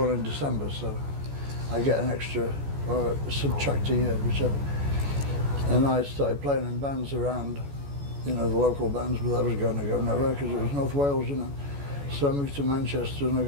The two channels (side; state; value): left; late; 14 ms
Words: in December, so I get an extra, or subtract a year, whichever. And I started playing in bands around, you know, the local bands, but that was going to go nowhere because it was North Wales, you know. So I moved to Manchester and I